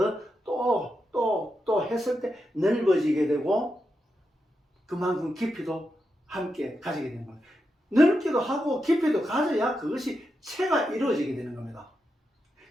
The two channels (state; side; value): normal; both; correlation 0.86